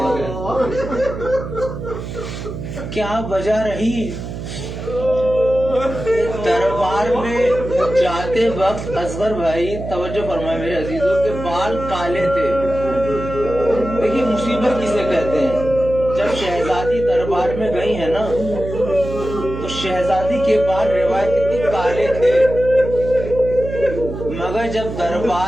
گیا؟ کیا وجہ رہی؟ دربار میں جاتے وقت اصغر بھائی توجہ فرمائے میرے عزیزوں کے بال کالے تھے. دیکھیے مصیبت کسے کہتے ہیں. جب شہزادی دربار میں گئی ہے نا تو شہزادی کے بال روایتی کالے تھے، مگر جب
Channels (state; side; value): noise; right; hum, 8 dB below the sound